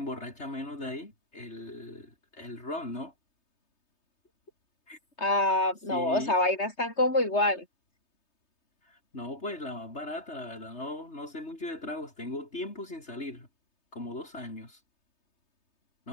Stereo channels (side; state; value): right; late; 3.3 ms